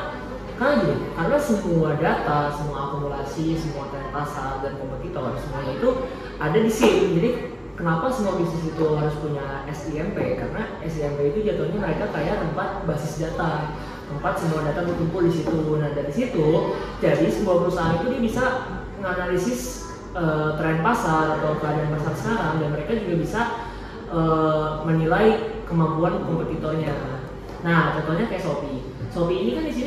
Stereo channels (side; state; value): both; identical; correlation 1.00